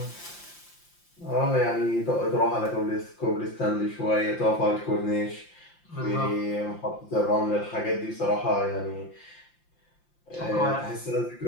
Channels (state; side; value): late; right; 5.8 ms